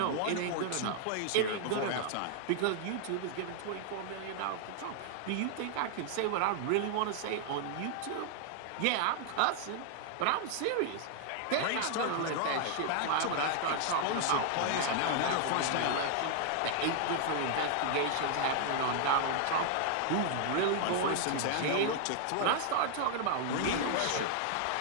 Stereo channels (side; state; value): both; different; correlation 0.00